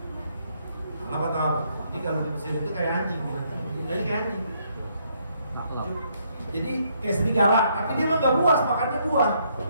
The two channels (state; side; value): inverted; both; correlation -0.72